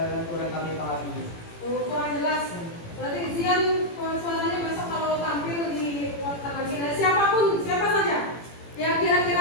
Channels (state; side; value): late; right; 18 ms